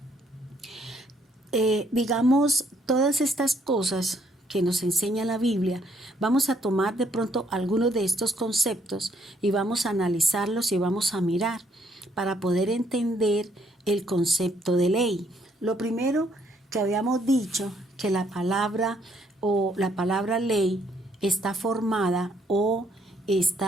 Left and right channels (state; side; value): normal; both; correlation 0.69